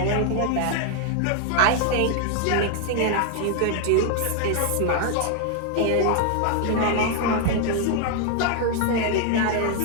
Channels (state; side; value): different; both; correlation 0.00